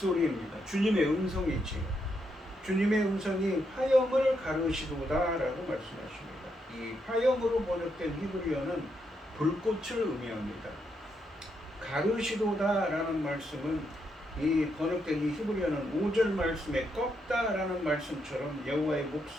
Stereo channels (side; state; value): both; normal; correlation 0.79